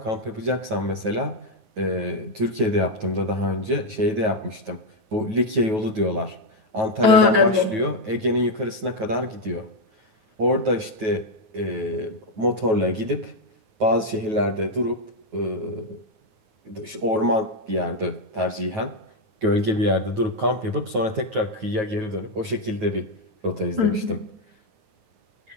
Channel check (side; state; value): left; late; 9.2 ms